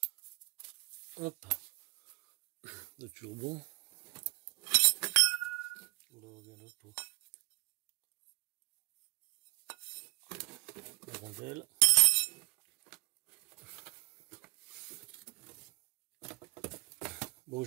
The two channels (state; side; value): quieter; left; 24.0 dB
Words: Hop. Le turbon. Là, on revient là pour la rondelle. Bon,